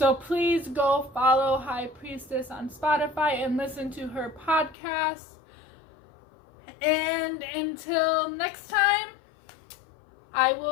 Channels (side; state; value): right; drops out; at 4.8 s